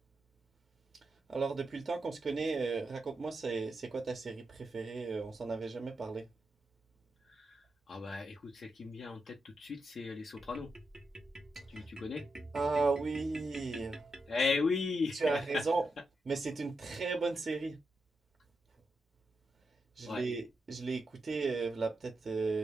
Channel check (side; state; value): both; normal; correlation 0.86